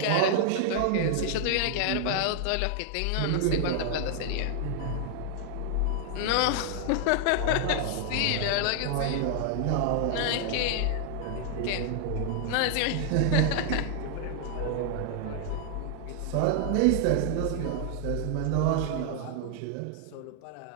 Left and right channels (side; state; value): both; different; correlation -0.01